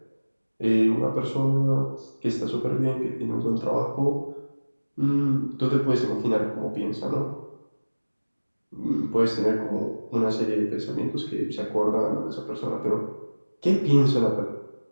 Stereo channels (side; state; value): both; inverted; correlation -1.00